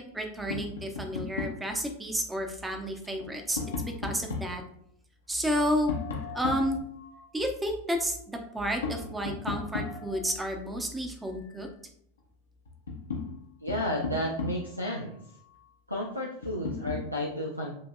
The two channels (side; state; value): both; normal; correlation 0.38